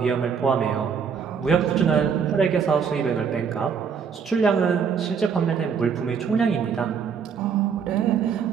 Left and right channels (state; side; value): quieter; left; 6.6 dB